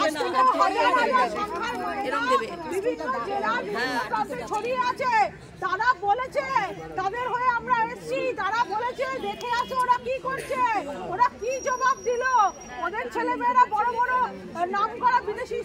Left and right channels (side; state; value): both; identical; correlation 1.00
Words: বিভিন্ন জেলা ছড়িয়ে আছে, তারা বলেছে, তাদের হয়ে আমরা এসছি, তারা বলেছে দেখে আসো ওরা কি করছে, ওরা কি জবাব দিল। ওদের ছেলেমেয়েরা বড় বড় নাম করা বিদেশি